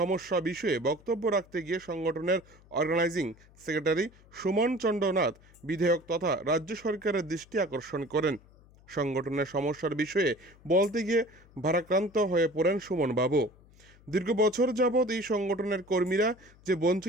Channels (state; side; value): noise; left; hum, 26 dB below the sound